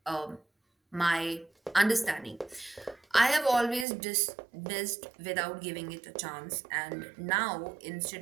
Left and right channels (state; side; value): drops out; left; at 3.9 s